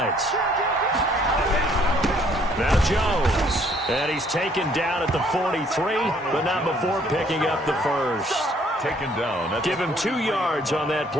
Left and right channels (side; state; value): both; normal; correlation 0.63